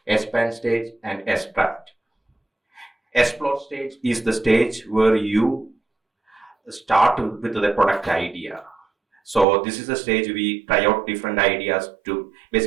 expand stage, and extract. Explore stage is the stage where you start with the product idea. So this is the stage we try out different ideas to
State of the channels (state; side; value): drops out; left; at 9.5 s